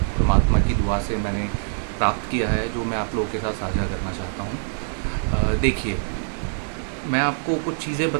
परमात्मा की दुआ से मैंने प्राप्त किया है, जो मैं आप लोगों के साथ साझा करना चाहता हूँ। देखिए, मैं आपको कुछ चीज़ें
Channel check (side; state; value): left; silent; 60 dB below the other